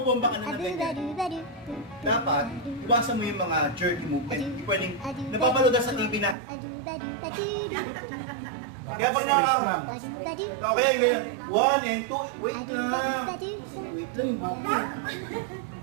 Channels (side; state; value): left; drops out; at 6.4 s